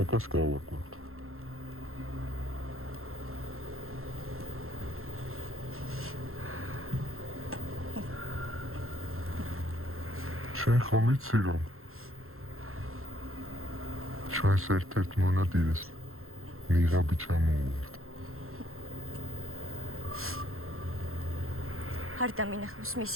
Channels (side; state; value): left; late; 0.62 ms